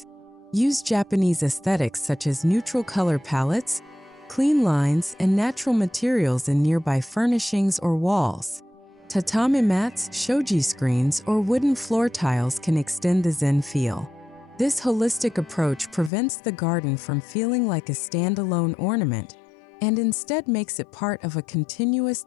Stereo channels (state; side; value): drops out; right; at 16.1 s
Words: Use Japanese aesthetics such as neutral color palettes, clean lines, and natural materials in nearby furnishings or walls. Tatami mats, shoji screens, or wooden floor tiles can extend the Zen feel. This holistic approach prevents the garden from feeling like a standalone ornament, and instead makes it part of a continuous